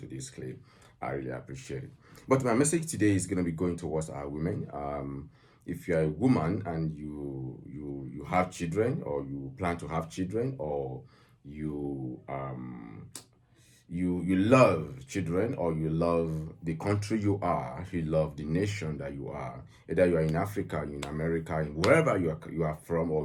this clip. I really appreciate it. But my message today is going to be going towards our women. If you're a woman and you have children, or you plan to have children, or you love children, or you love the country you love the nation that you are, either you are in Africa, in America, in wherever you are from,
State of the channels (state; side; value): identical; both; correlation 1.00